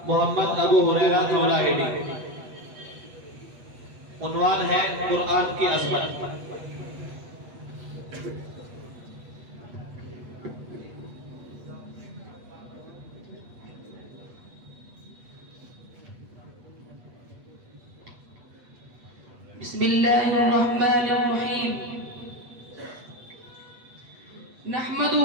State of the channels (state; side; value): late; left; 8.2 ms